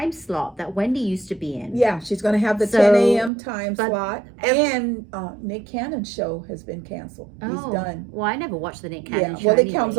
slot that Wendy used to be in. Yeah, she's going to have the 10 a.m. time slot. And Nick Cannon's show has been canceled. He's done. Well, I never watched the Nick Cannon show. Well, it comes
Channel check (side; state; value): left; drops out; at 3.3 s